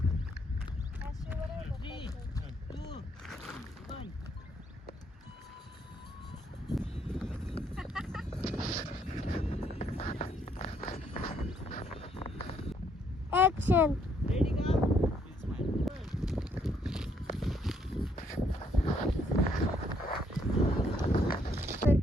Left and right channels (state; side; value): normal; both; correlation 0.70